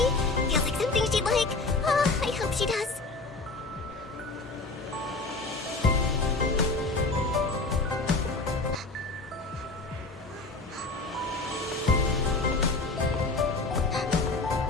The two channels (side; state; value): right; quieter; 3.5 dB